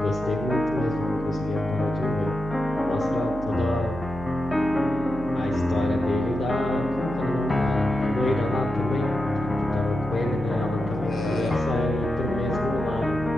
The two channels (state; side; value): noise; right; hum, 12 dB below the sound